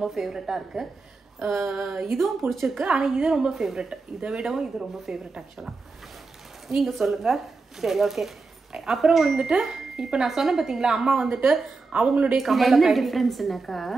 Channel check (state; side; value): quieter; left; 4.0 dB